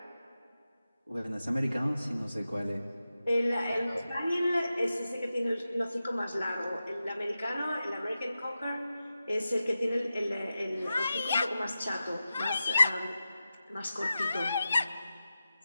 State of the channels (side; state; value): both; inverted; correlation -0.92